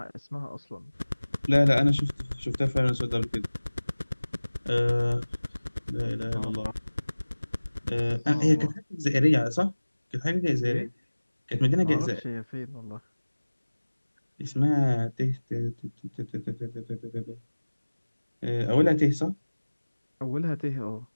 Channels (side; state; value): both; inverted; correlation -1.00